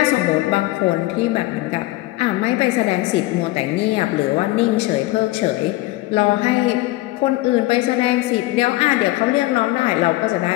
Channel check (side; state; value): right; quieter; 18.8 dB